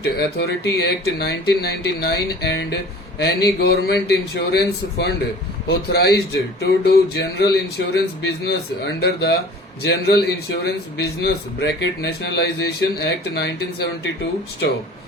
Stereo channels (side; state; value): both; normal; correlation 0.44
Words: Authority Act 1999 and any government insurance fund authorized to do general insurance business under the General Insurance Business Nationalization Act 1972 stop.